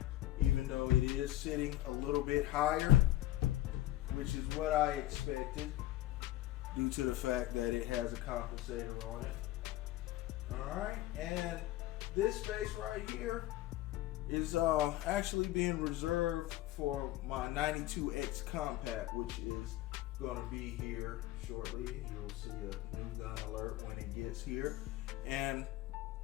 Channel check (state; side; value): quieter; right; 15.1 dB